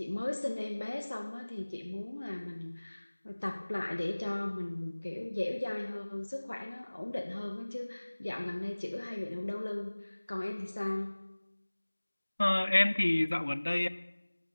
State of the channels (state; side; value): inverted; both; correlation -1.00